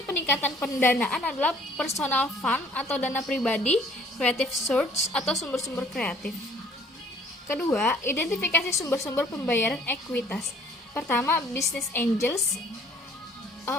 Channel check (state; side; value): normal; both; correlation 0.57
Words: peningkatan pendanaan adalah personal fund atau dana pribadi, creative source atau sumber-sumber kreatif. Kedua, identifikasi sumber-sumber pembayaran ekuitas. Pertama, business angels.